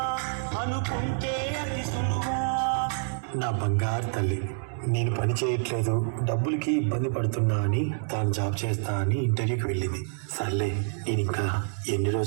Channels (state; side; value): silent; left; 60 dB below the other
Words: ఉంటే అతి సులువా. నా బంగారు తల్లి, నేను పని చేయట్లేదు, డబ్బులకి ఇబ్బంది పడుతున్నా అని తాను జాబ్ చేస్తా అని ఇంటర్వ్యూకి వెళ్ళింది. సర్లే, నేను ఇంకా ఎన్ని